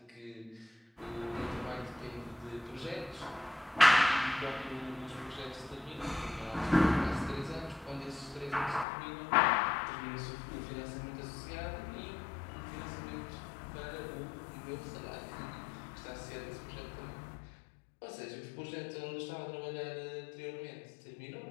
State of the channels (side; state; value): right; drops out; at 8.8 s